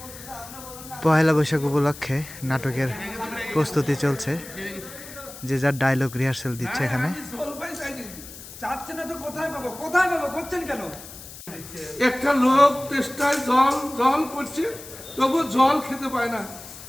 পহেলা বৈশাখ উপলক্ষে নাটকের প্রস্তুতি চলছে, যে যার ডায়লগ রিহার্সেল দিচ্ছে এখানে। চাচ্ছে না তো কোথায় পাবো কোথায় পাবো করছেন কেন? একটা লোক তেষ্টায় জল জল করছে, তবু জল খেতে পায় না,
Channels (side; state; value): left; noise; hiss, 15 dB below the sound